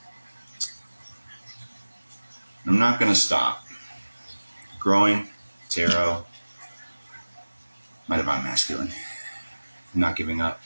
I'm not going to stop. Growing, tarot, my divine masculine. I'm not giving up.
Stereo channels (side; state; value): both; inverted; correlation -1.00